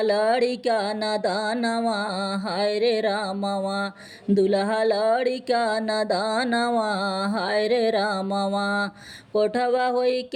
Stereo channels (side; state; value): both; identical; correlation 1.00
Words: लड़िका नदानवा हाय रे रामवा दुल्हा लड़िका नदानवा हाय रे रामवा कोठवा होई